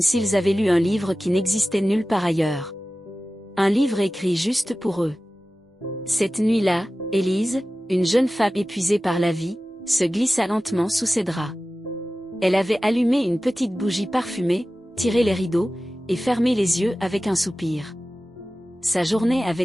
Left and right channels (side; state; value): both; normal; correlation 0.96